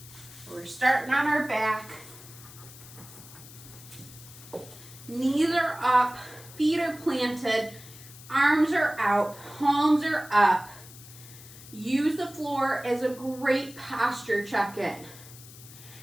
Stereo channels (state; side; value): noise; left; hiss, 18 dB below the sound